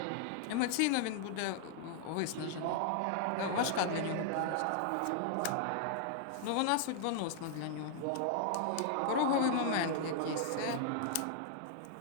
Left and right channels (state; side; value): different; both; correlation -0.01